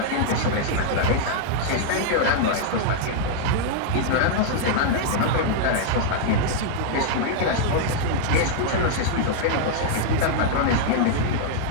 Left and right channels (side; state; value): both; different; correlation -0.01